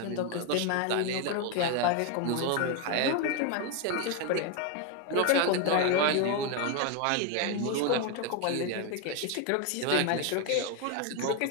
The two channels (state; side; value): different; both; correlation 0.02